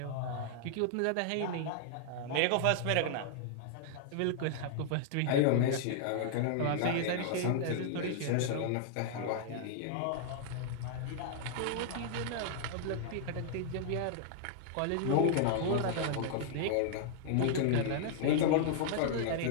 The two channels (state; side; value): different; both; correlation -0.01